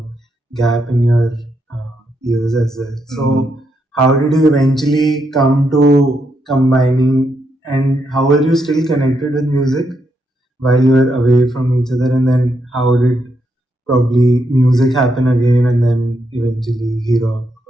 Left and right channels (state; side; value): normal; both; correlation 0.80